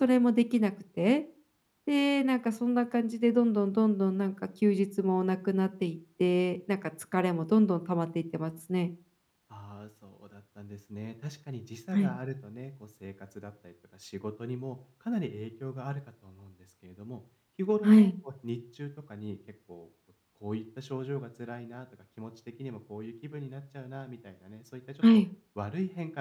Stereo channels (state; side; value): identical; both; correlation 1.00